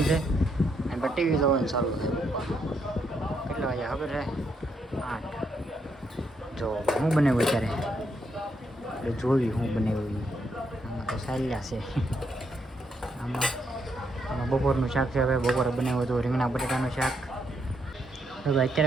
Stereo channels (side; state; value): both; normal; correlation 0.77